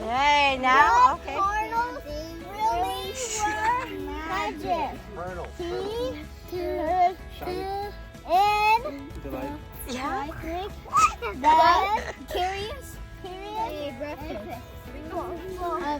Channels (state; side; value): identical; both; correlation 1.00